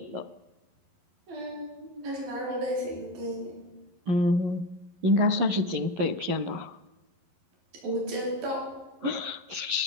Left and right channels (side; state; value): left; late; 11 ms